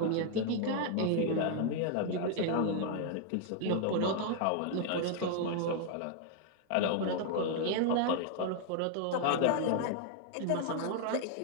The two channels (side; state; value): both; different; correlation 0.00